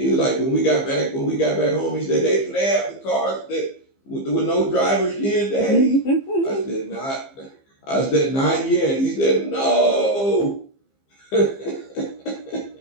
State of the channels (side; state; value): right; late; 15 ms